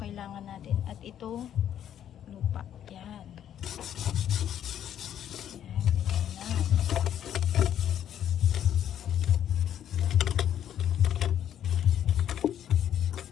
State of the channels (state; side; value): quieter; right; 10.2 dB